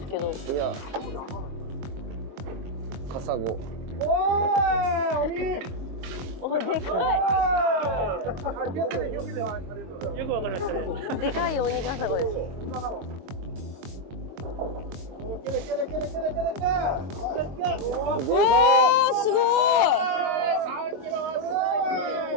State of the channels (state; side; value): late; left; 22 ms